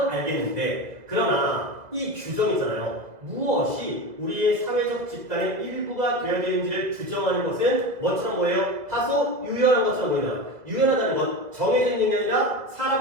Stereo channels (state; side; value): late; left; 2.1 ms